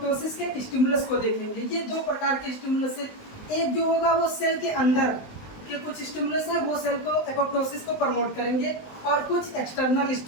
के स्टिमुलस को देखेंगे। ये दो प्रकार के स्टिमुलस है, एक जो होगा वो सेल के अंदर के कुछ स्टिमुलस है, वो सेल को एपोप्टोसिस को प्रमोट करेंगे, और कुछ एक्सटर्नल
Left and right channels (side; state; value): right; late; 19 ms